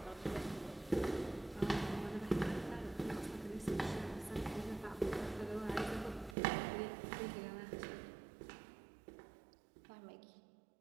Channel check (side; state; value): left; drops out; at 6.4 s